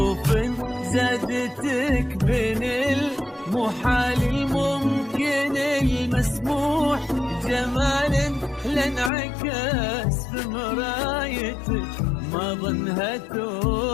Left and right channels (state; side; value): drops out; right; at 9.1 s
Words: زادتك بين المحال الممكن المسموح جمال لانعكس في مرايتك ما ظنها